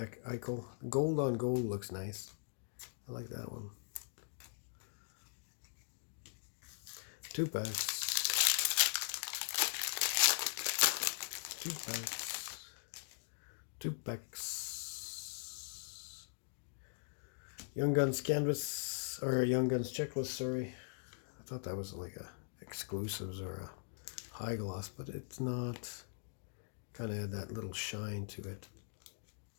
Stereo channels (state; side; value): silent; right; digital silence